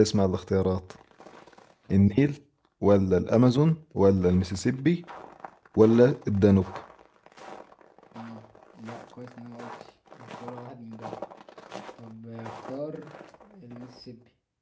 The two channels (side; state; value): both; identical; correlation 1.00